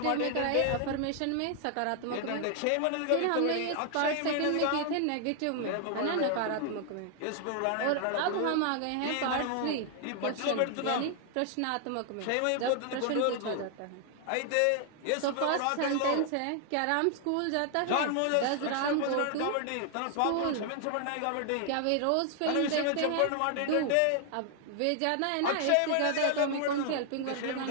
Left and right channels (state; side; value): different; both; correlation 0.00